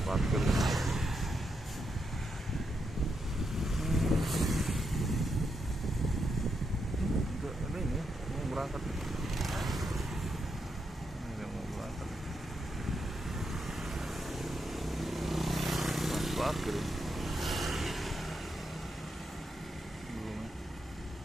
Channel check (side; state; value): both; normal; correlation 0.82